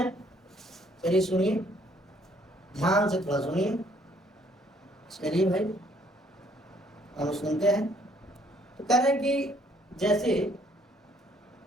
चलिए सुनिए, ध्यान से थोड़ा सुनिए। चलिए भाई, हम सुनते हैं। तो कह रहे हैं कि जैसे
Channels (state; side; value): normal; both; correlation 0.64